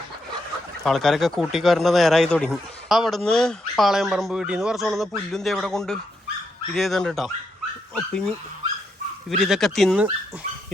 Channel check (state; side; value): normal; both; correlation 0.81